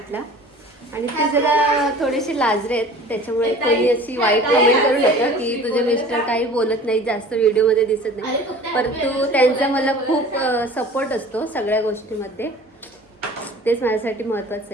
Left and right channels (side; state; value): both; normal; correlation 0.44